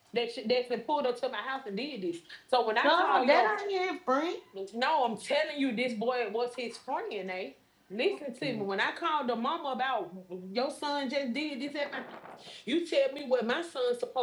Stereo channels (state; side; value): identical; both; correlation 1.00